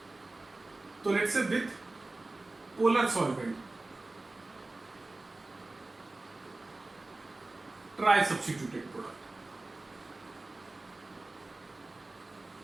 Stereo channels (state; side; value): quieter; left; 3.0 dB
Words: तो let's say with polar solvent tri substituted product,